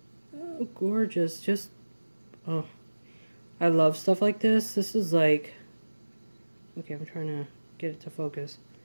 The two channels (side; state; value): both; inverted; correlation -1.00